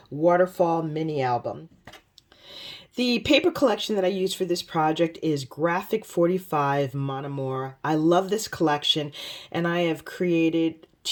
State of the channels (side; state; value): both; identical; correlation 1.00